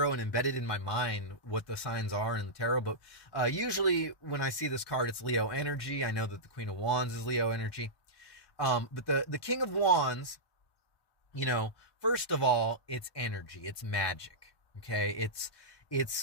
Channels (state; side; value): late; right; 1.1 ms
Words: and embed it in my mind what the signs are in the tarot. But usually when I see this card, it's Leo energy. I know that the Queen of Wands is Leo energy. But the King of Wands, first of all, it's energy, it's magic, okay?